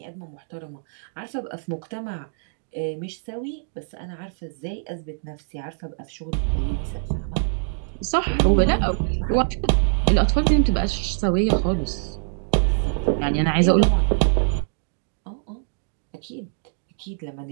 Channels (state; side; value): silent; left; digital silence